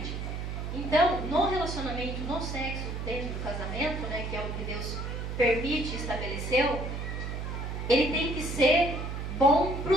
Então, no relacionamento, no sexo, dentro do casamento, né, que é o que Deus permite e estabeleceu, ele tem que ser bom para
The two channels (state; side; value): noise; right; hum, 5 dB below the sound